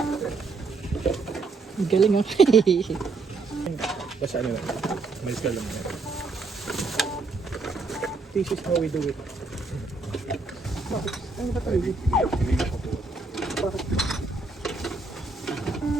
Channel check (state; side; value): quieter; left; 3.9 dB